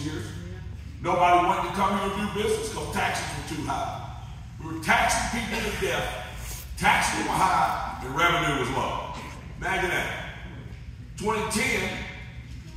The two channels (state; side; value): identical; both; correlation 1.00